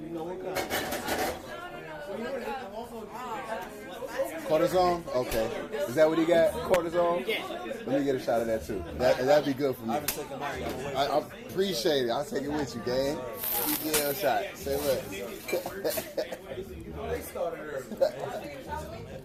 know what kind? Cortisone? Okay. Is that what he got? Cortisone? Yeah. Let me get a shot of that too. That'd be good for me. I appreciate it. I'll take it with you, gang. You get a shot. Say what?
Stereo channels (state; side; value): identical; both; correlation 1.00